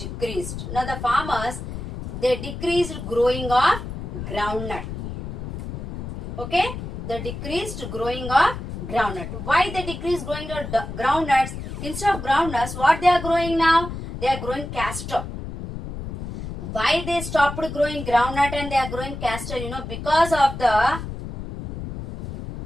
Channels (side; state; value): left; noise; rumble, 8 dB below the sound